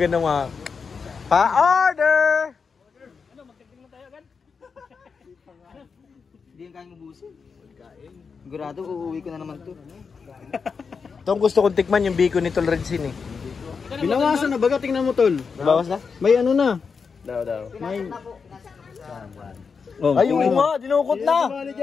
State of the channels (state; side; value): quieter; right; 5.5 dB